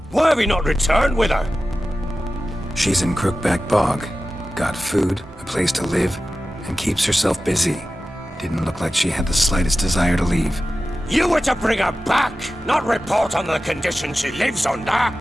Why have you not returned with her? She's in Crookback Bog. Got food, a place to live, and keeps herself busy. Didn't look like she had the slightest desire to leave. You were to bring her back, not report on the conditions she lives under.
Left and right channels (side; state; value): both; normal; correlation 0.94